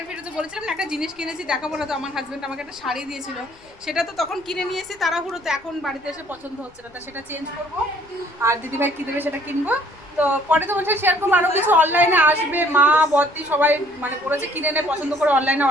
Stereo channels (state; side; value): noise; left; rumble, 28 dB below the sound